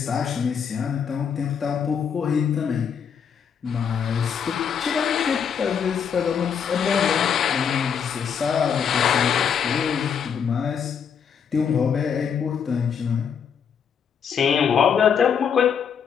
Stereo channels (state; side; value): quieter; right; 7.3 dB